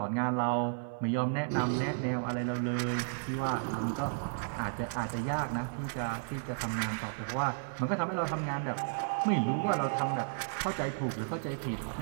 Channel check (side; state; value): left; silent; 56 dB below the other